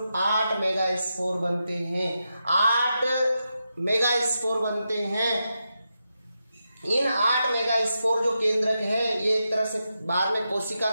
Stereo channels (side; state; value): both; inverted; correlation -0.87